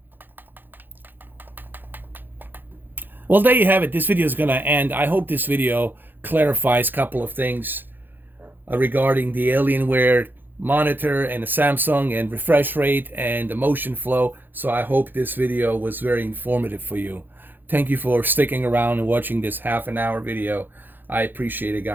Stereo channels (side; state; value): left; late; 0.092 ms